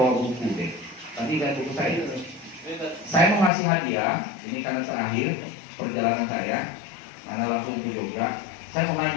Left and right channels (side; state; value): right; drops out; at 3.5 s